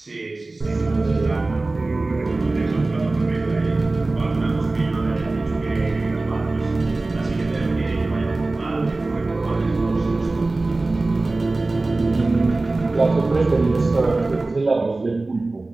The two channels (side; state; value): left; quieter; 3.2 dB